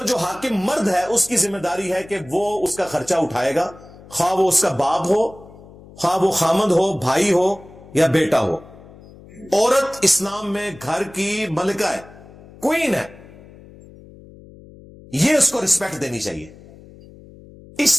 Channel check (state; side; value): noise; left; hum, 21 dB below the sound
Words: جو حاکم مرد ہے اس کی ذمہ داری ہے کہ وہ اس کا خرچہ اٹھائے گا، خواہ وہ اس کا باپ ہو، خواہ وہ خامند ہو، بھائی ہو یا بیٹا ہو. عورت اسلام میں گھر کی ملکہ ہے، کوئین ہے. یہ اس کو رسپیکٹ دینی چاہیے.